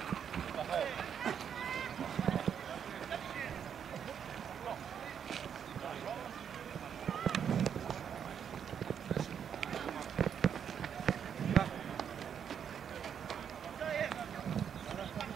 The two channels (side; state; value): left; quieter; 8.0 dB